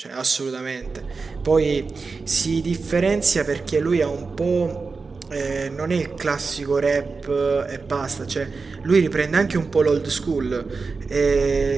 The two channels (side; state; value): left; quieter; 4.4 dB